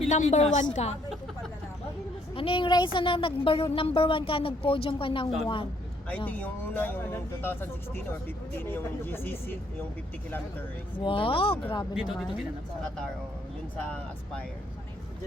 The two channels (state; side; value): normal; both; correlation 0.68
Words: 1 ka? Ano yung race na number 1 ka, nag-podium ka ng 1? I think yung una, yung 2016 or 15, yung GCC, yung 50 kilometer race. Wow, grabe Dito naman. ginanap. Sa Qatar, yun sa Aspire.